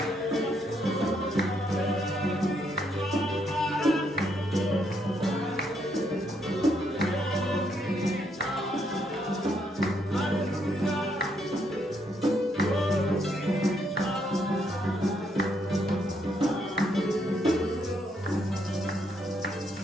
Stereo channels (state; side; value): normal; both; correlation 0.75